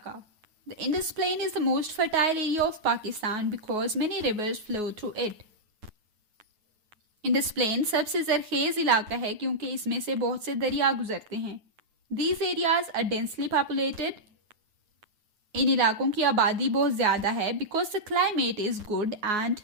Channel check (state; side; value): late; left; 9.5 ms